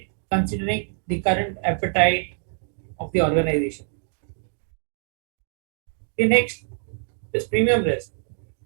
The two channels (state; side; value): silent; left; digital silence